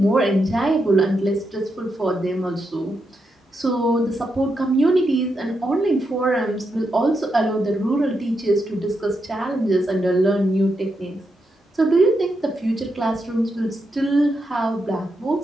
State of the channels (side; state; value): both; normal; correlation 0.83